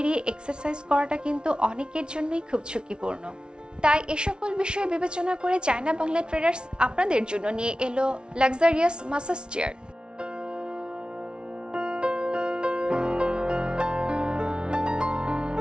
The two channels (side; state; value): left; late; 0.056 ms